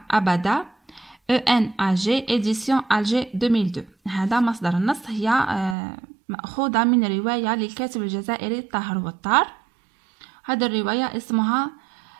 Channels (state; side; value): drops out; left; at 5.8 s